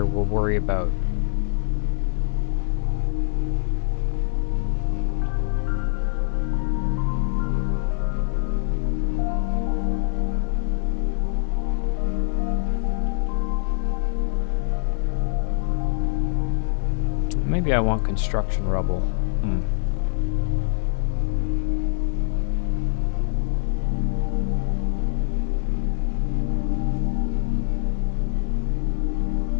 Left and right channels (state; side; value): silent; right; digital silence